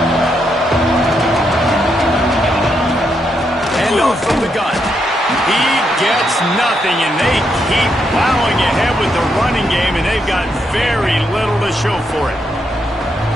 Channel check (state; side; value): normal; both; correlation 0.79